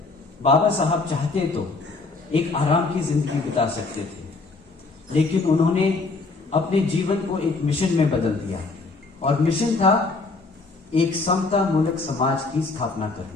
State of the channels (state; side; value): quieter; right; 3.8 dB